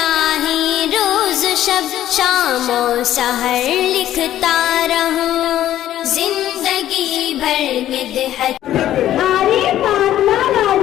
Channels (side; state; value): right; quieter; 12.5 dB